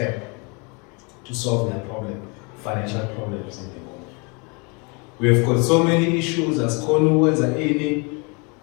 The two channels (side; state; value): right; quieter; 31.4 dB